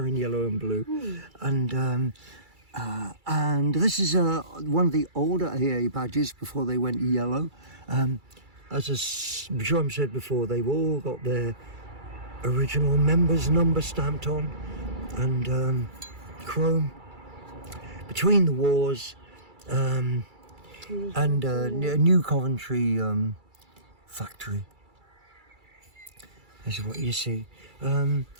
yellow and blue. And this is one of the older AA badges before they went yellow. As Jerome said before, they've all got their original members number stamped on, and chrome. Between the wars, and New Coventry factory. This is what you see. I've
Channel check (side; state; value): left; late; 2.3 ms